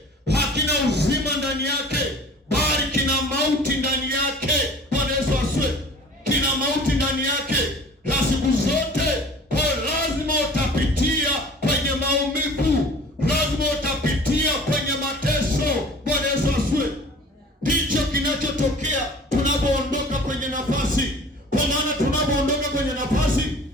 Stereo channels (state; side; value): normal; both; correlation 0.45